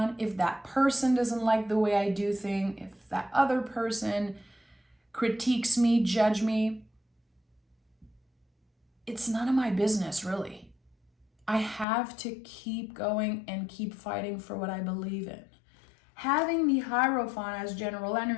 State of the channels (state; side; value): drops out; right; at 11.9 s